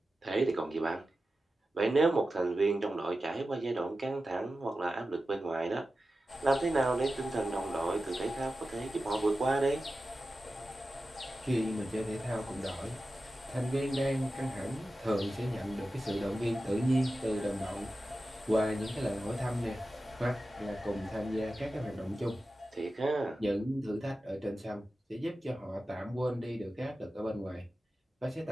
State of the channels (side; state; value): both; normal; correlation 0.93